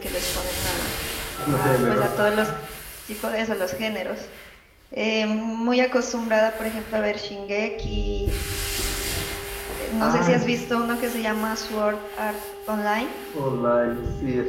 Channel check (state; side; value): identical; both; correlation 1.00